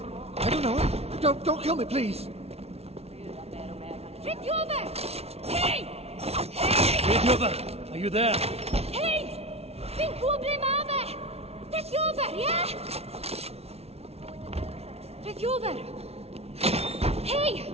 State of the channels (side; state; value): left; late; 0.30 ms